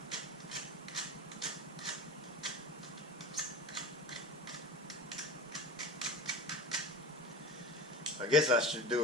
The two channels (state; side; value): normal; both; correlation 0.31